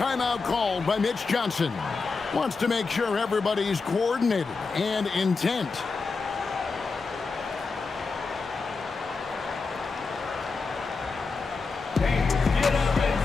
called by Mitch Johnson. Wants to make sure everybody's coordinated and intent.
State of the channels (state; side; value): quieter; right; 4.4 dB